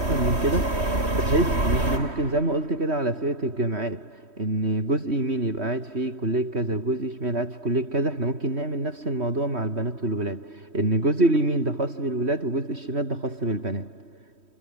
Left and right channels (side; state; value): left; late; 3.1 ms